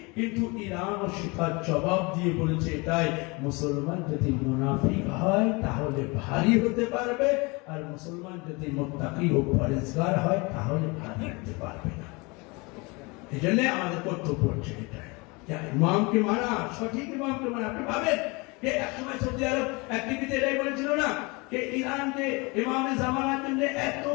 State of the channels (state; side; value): quieter; right; 27.1 dB